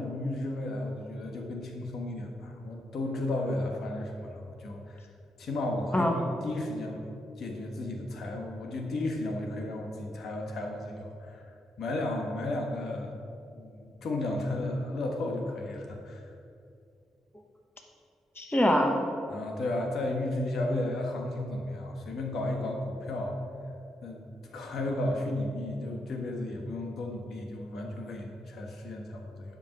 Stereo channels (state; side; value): normal; both; correlation 0.80